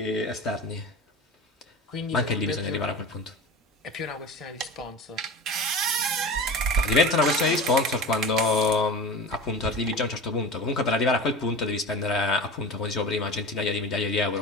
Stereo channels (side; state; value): both; normal; correlation 0.32